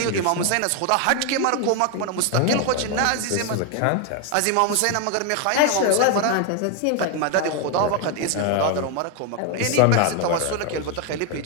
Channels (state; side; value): different; both; correlation 0.01